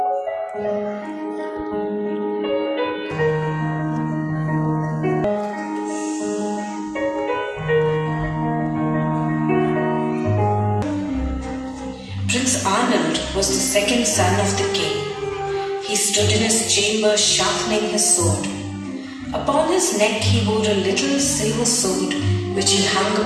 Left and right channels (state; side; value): identical; both; correlation 1.00